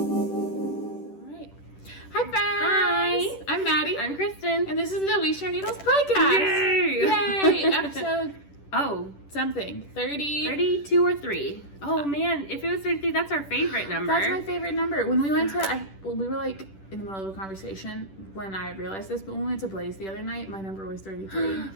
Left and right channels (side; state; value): right; late; 10 ms